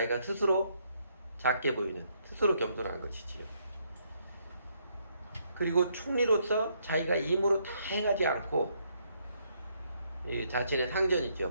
스스로 작게 보이는, 스스로 겸손한 것이지요. 그리고 총리로서 자기가 임으로 다 행하지 않고 이 자신의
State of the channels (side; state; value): both; inverted; correlation -0.72